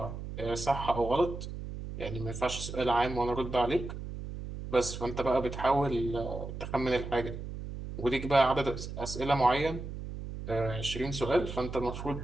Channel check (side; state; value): right; noise; hum, 8 dB below the sound